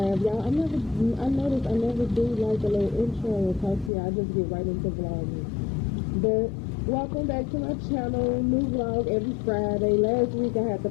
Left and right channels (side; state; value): right; drops out; at 3.9 s